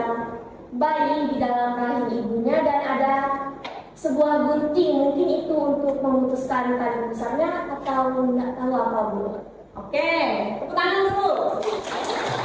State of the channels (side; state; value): both; identical; correlation 1.00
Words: bayi di dalam rahim ibunya dan ada sebuah gunting, mungkin itu untuk memutuskan tali pusarnya atau nggak tahu apa Bu. Oke, tepuk tangan dulu.